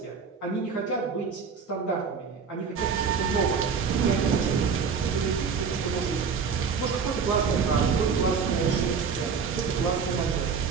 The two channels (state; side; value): quieter; left; 5.8 dB